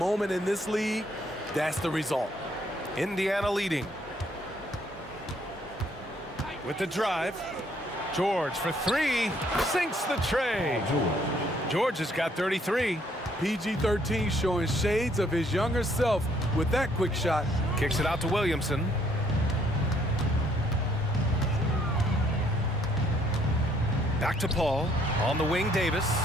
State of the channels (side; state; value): both; normal; correlation 0.67